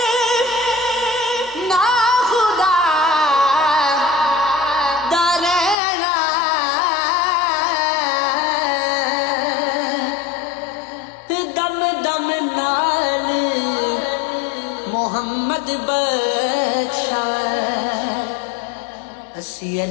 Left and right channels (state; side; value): drops out; right; at 5.8 s